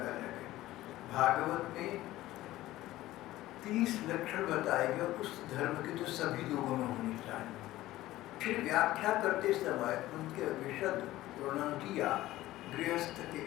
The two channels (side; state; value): right; quieter; 16.1 dB